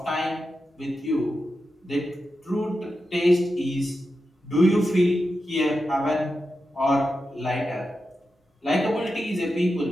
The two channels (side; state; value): both; normal; correlation 0.90